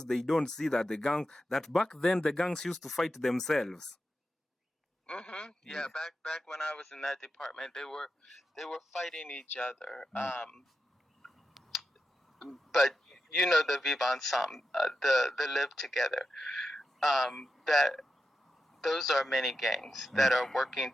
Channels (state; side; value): normal; both; correlation 0.89